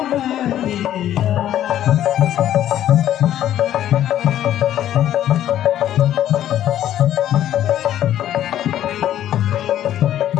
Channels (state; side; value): quieter; right; 11.8 dB